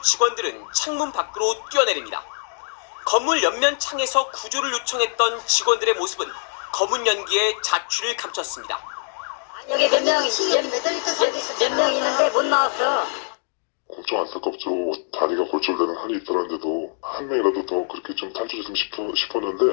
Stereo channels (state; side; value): silent; right; digital silence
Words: 창문 밖으로 뛰어내립니다. 건물 옆면 창에서 구조를 요청했던 직원들의 모습은 검은 연기에 자취를 감췄습니다. 여기 몇 명 있는데 못 나왔어. 엄청 안타깝죠. 다리가 골절되는 한이 있더라는데도 한 명이라도 더 그렇게 좀 탈출했으면